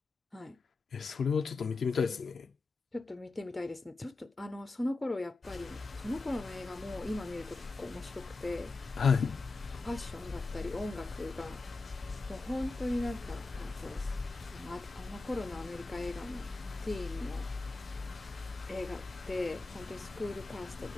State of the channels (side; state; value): right; quieter; 3.6 dB